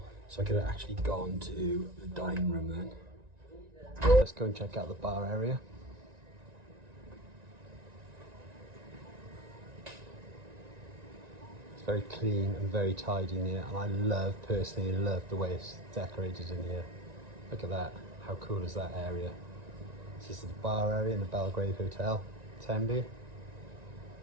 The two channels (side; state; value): left; late; 1.9 ms